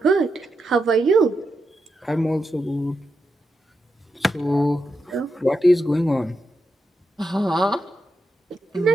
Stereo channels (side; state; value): both; normal; correlation 0.86